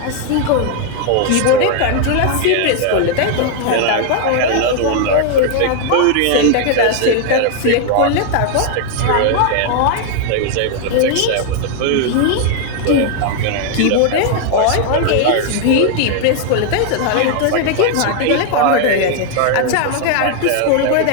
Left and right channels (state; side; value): different; both; correlation 0.00